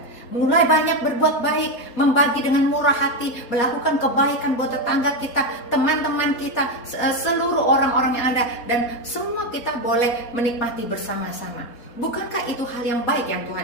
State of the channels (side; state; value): right; late; 4.3 ms